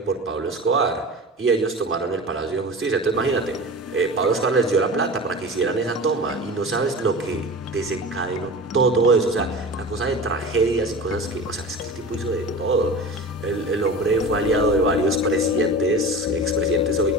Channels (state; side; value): normal; both; correlation 0.34